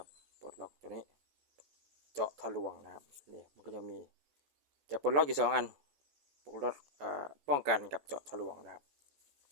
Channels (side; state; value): left; late; 14 ms